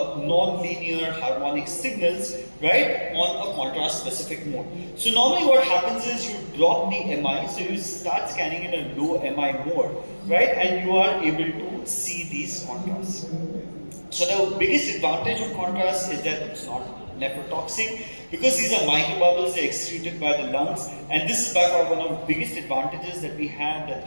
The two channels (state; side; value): inverted; both; correlation -1.00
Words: harmonic signals, right, on a contrast specific mode. So normally what happens is you drop the MI, so you start scanning in a low MI mode, right, and you are able to see these contrasts. So the biggest advantage of contrast is that it's not nephrotoxic, because these are microbubbles, they're excreted by the lungs, and this is by far one of the biggest advantages that we have, that